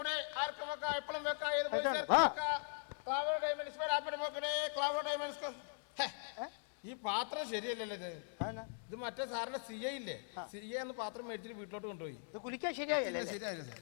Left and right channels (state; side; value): silent; right; digital silence